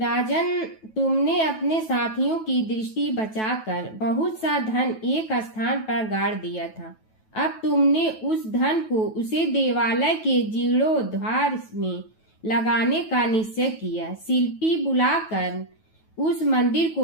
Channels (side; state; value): right; late; 9.2 ms